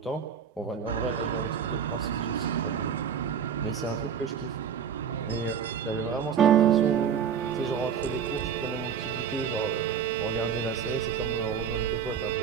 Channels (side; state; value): left; quieter; 7.5 dB